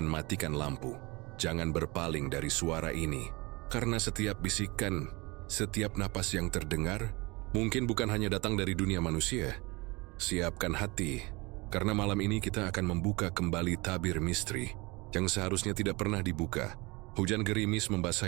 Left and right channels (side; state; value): left; quieter; 25.1 dB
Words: matikan lampu, jangan berpaling dari suara ini, karena setiap bisikan, setiap napas yang terdengar, mungkin bukan hanya datang dari dunia manusia. Siapkan hati, karena malam ini kita akan membuka kembali tabir misteri yang seharusnya tidak pernah dibuka. Hujan gerimis